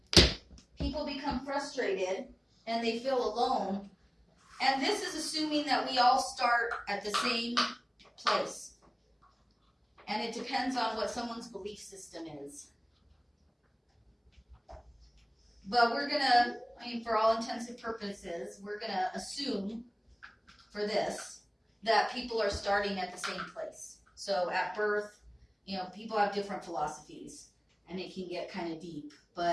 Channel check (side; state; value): both; identical; correlation 1.00